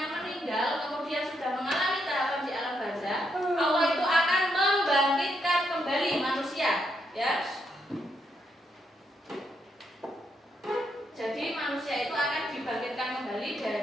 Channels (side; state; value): both; normal; correlation 0.78